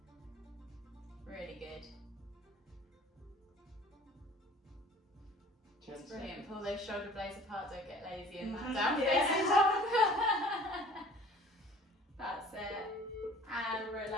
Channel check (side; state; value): both; normal; correlation 0.48